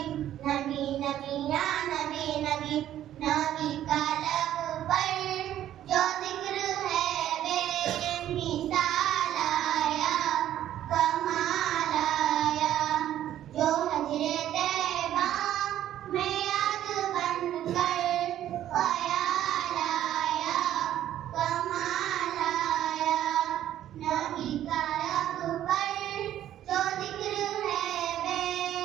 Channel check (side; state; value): left; quieter; 11.9 dB